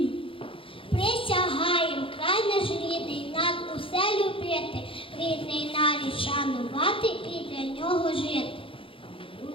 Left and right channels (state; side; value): late; right; 0.26 ms